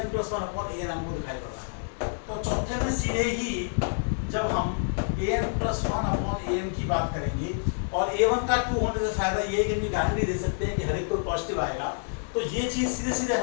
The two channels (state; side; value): silent; right; digital silence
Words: प्लस 1 अपॉन an हमको दिखाई पड़ रहा है। तो चौथे में सीधे ही जब हम an प्लस 1 अपॉन an की बात करेंगे, और a1 का 2 होने से फायदा ये है कि हम गारंटी दे सकते हैं कि हर एक कोई पॉजिटिव आएगा, तो ये चीज़ सीधे सीधे